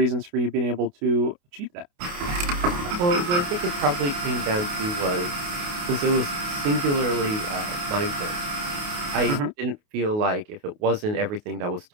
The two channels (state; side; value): late; left; 28 ms